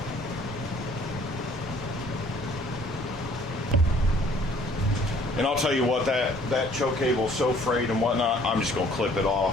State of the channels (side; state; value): both; normal; correlation 0.57